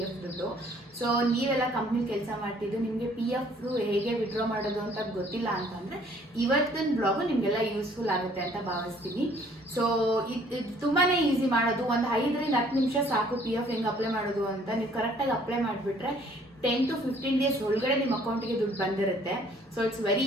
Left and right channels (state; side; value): normal; both; correlation 0.59